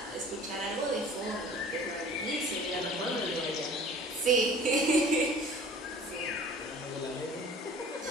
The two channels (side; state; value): both; normal; correlation 0.47